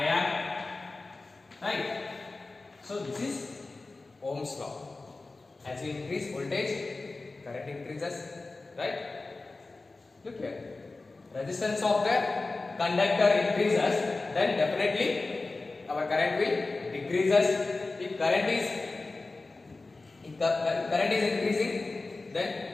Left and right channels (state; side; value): quieter; right; 3.5 dB